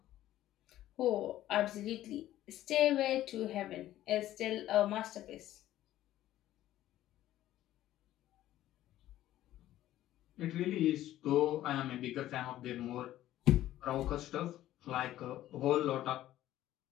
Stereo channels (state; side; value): quieter; right; 13.8 dB